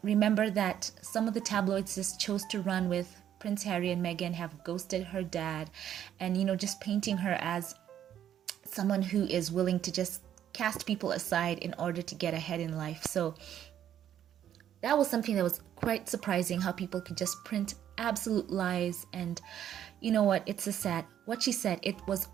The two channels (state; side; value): quieter; left; 10.4 dB